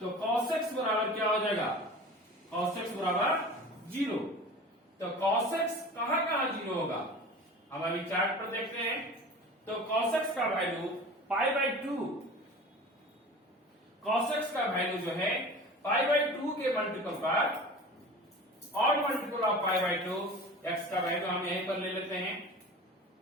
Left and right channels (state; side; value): normal; both; correlation 0.38